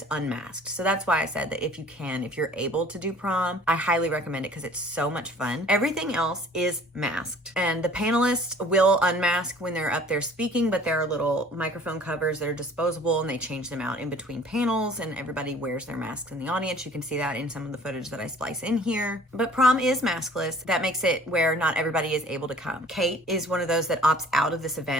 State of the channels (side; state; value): both; normal; correlation 0.51